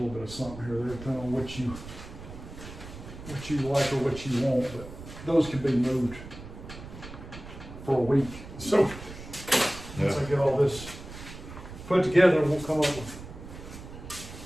something here or there, depending on what you like or what you want, but those can be moved for a week. So once I get all this put together, we'll come up with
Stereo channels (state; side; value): noise; right; rumble, 13 dB below the sound